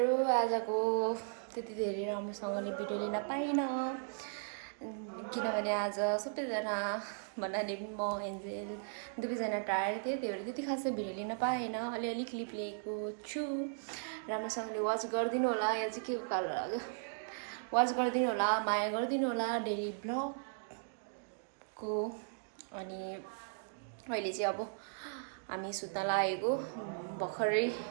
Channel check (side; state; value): left; silent; digital silence